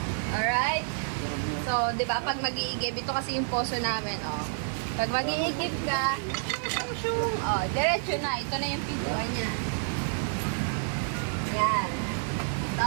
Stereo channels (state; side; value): silent; left; digital silence